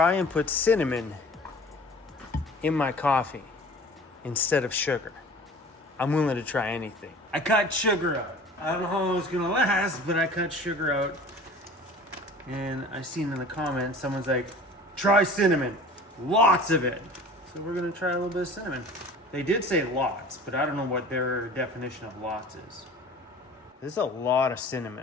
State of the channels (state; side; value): normal; both; correlation 0.43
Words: and put cinnamon in my coffee instead of sugar. I'm willing to try anything. I cut sugar out. I don't know how long it's gonna last, but I cut sugar out. And I seen in the comments, someone's like, try cinnamon, lots of it. So we're gonna try a little bit of cinnamon. They did say lots, but I don't know what their definition of lots is. There's a lot of